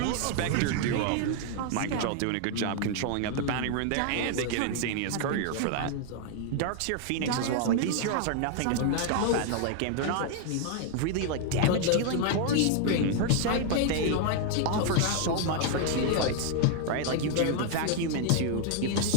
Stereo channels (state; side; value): different; both; correlation 0.00